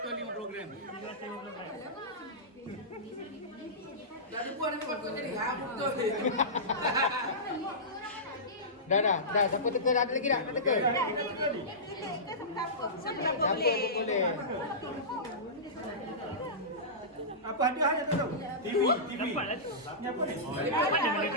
gram. Dah buang dengan makot tadi. Ha betul. Dah. Siapa teka? Ada lagi tak? Nak teka? Siapa boleh. Apa hadiah tu? TV. Dapat lah tu. Ni apa ni?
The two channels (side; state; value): both; normal; correlation -0.19